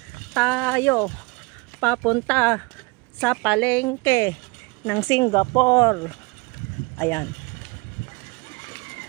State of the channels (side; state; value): left; quieter; 27.3 dB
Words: Tayo papunta sa palengke ng Singapore. Ayan.